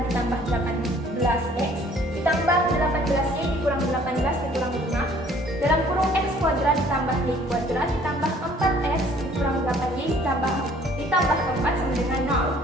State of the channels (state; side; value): normal; both; correlation 0.57